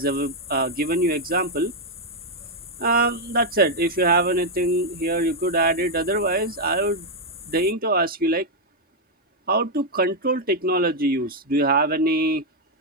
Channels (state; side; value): normal; both; correlation -0.01